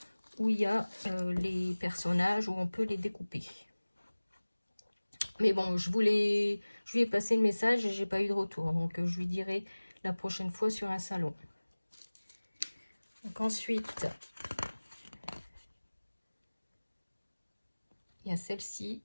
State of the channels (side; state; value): both; inverted; correlation -1.00